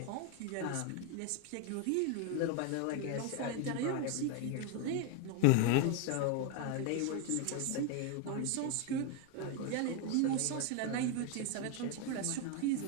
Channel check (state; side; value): different; both; correlation 0.01